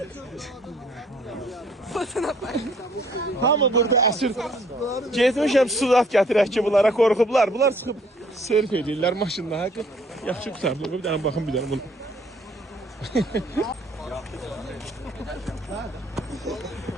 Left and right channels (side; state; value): both; normal; correlation 0.61